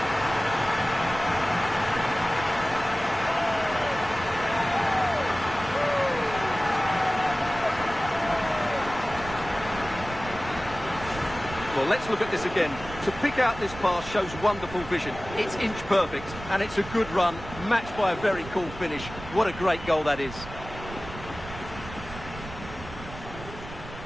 Well, let's look at this again. To pick out this pass shows wonderful vision. It's inch perfect, and it's a good run, matched by a very cool finish. What a great goal that is.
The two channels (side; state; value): right; noise; rumble, 13 dB below the sound